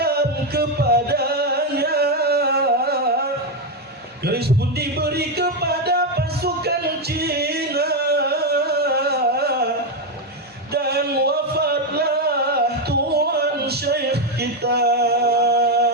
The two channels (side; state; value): both; normal; correlation 0.06